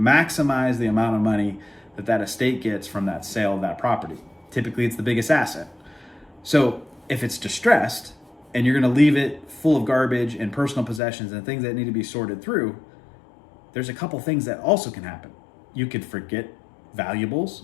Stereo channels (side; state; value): right; drops out; at 11.0 s